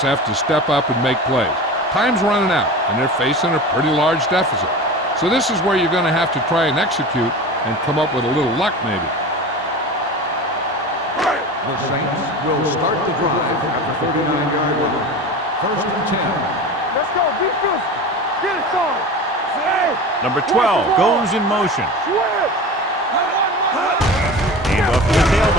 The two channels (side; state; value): both; normal; correlation 0.32